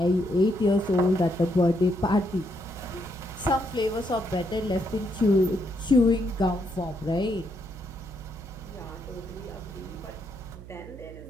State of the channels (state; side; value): noise; right; hum, 15 dB below the sound